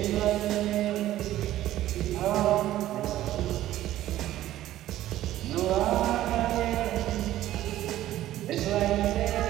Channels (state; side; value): quieter; left; 13.9 dB